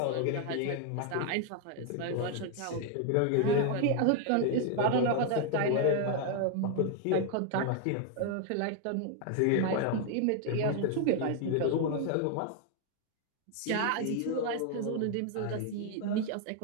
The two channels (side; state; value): both; different; correlation 0.00